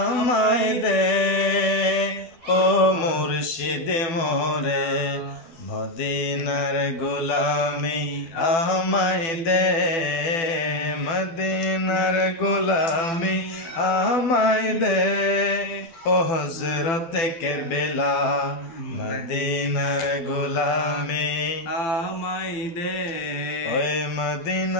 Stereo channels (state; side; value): late; right; 12 ms